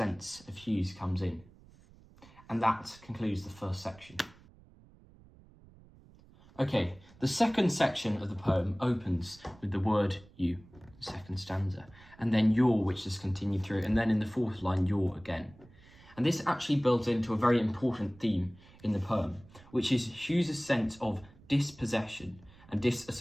of Hughes comes in. And that concludes the first section. Okay, the second section of the poem opens with the word you, the second stanza, and then your, which is continued through, and then in the fourth line, your again. And this actually builds into a very important theme in the poem, which is Hughes' sense of dispossession and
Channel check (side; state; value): right; noise; rumble, 24 dB below the sound